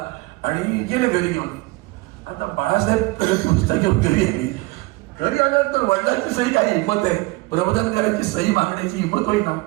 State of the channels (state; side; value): quieter; left; 23.0 dB